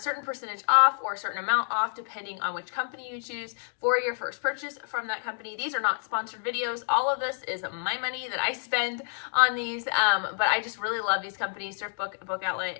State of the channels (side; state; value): right; silent; 59 dB below the other